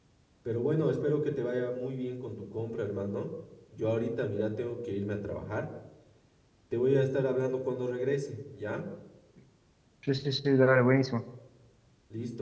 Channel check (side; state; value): both; identical; correlation 1.00